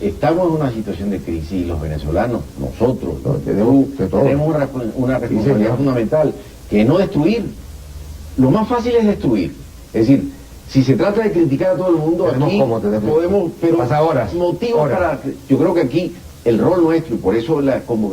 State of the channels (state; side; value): identical; both; correlation 1.00